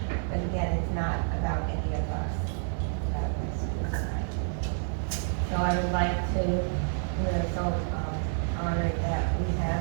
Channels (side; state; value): left; silent; digital silence